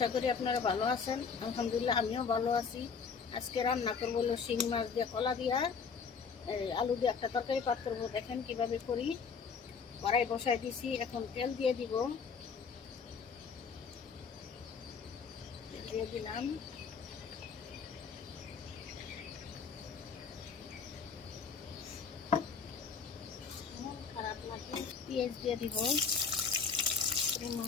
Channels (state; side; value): quieter; right; 5.8 dB